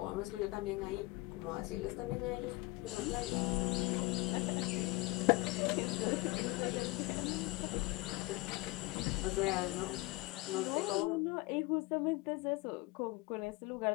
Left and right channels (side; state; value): right; quieter; 22.4 dB